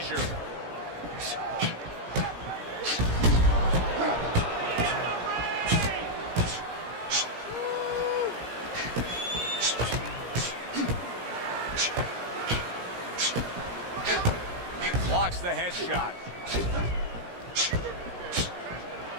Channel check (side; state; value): left; late; 17 ms